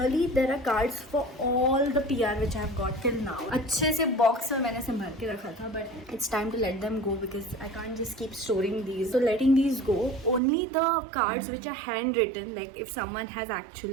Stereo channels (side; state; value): left; drops out; at 10.4 s